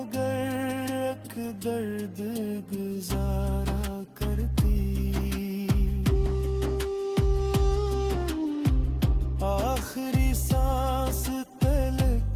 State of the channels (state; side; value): identical; both; correlation 1.00